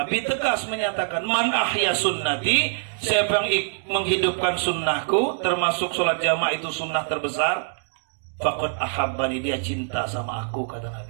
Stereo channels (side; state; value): left; silent; digital silence